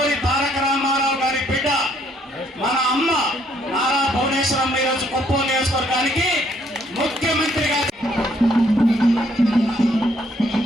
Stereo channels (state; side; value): normal; both; correlation 0.67